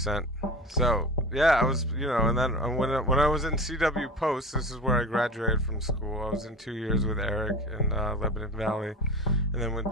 So, yeah, I was, you know, and then when I was in CW Post, this is where I graduated from school. I was in 2 years with Eric in Lebanon Valley, and then went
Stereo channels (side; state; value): both; normal; correlation 0.32